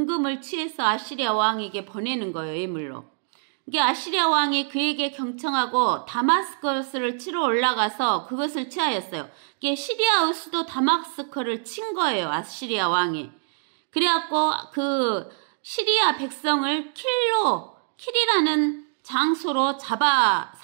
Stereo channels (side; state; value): left; silent; digital silence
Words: 취해서 아시리아 왕에게 보내는 거예요, 예물로. 이게 아시리아 왕이 그에게 경청하고 다마스커스를 치러 올라가서 그것을 취하였어요. 이게 시리아의 수도 다마스커를 친 거예요, 아시리아 왕이. 그래갖고 그 시리아 백성을 킬이라는 장소로